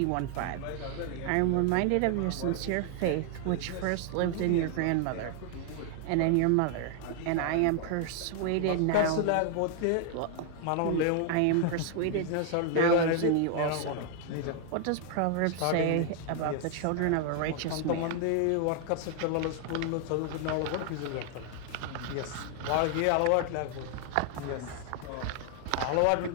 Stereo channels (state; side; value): different; both; correlation 0.00